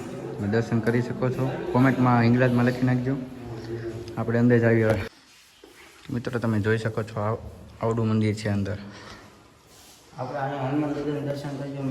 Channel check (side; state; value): both; identical; correlation 1.00